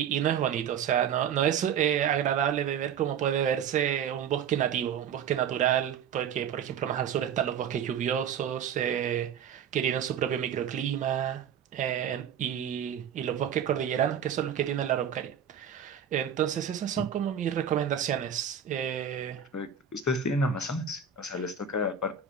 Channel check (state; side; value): quieter; left; 7.9 dB